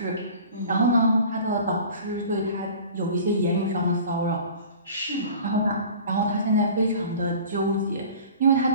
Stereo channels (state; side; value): inverted; both; correlation -0.42